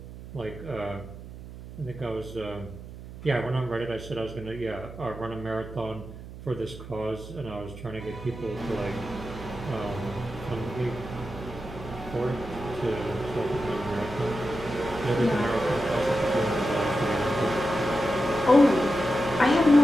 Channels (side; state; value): right; noise; hum, 13 dB below the sound